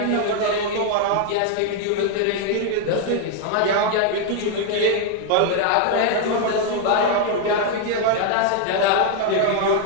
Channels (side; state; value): both; different; correlation 0.00